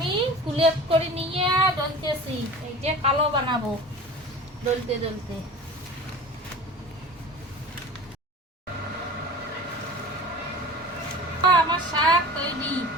কুলেপ করে নিয়ে ডলতেছি, এই যে কালো বানাবো ডলতে ডলতে। আমার শাক তৈরি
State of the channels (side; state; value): both; normal; correlation 0.38